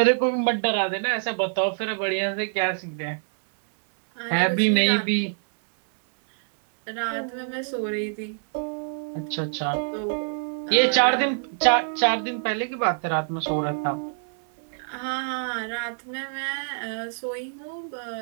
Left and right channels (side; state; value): left; silent; 61 dB below the other